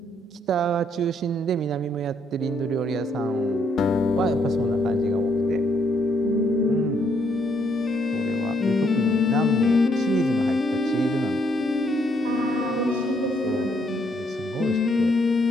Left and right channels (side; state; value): both; normal; correlation 0.71